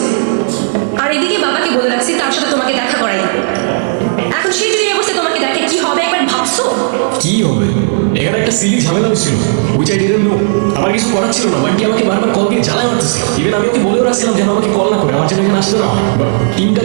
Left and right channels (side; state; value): left; silent; digital silence